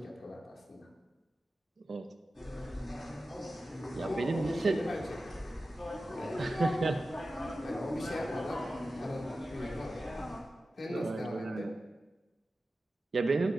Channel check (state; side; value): normal; both; correlation 0.94